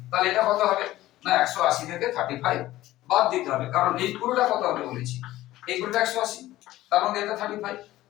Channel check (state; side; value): quieter; right; 15.8 dB